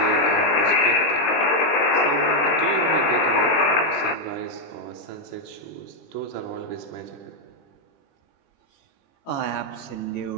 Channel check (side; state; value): right; late; 21 ms